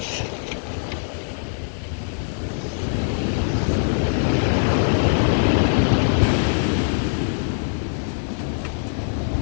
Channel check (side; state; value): right; silent; digital silence